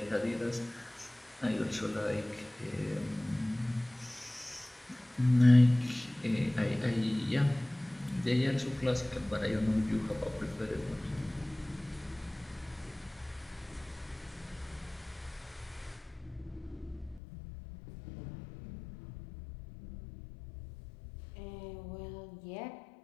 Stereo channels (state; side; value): drops out; right; at 17.2 s